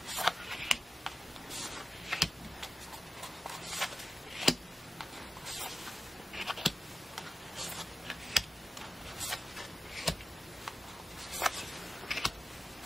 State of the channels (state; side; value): normal; both; correlation 0.94